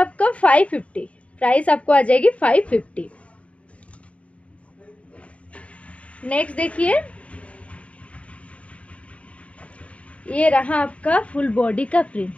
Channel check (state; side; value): late; right; 0.065 ms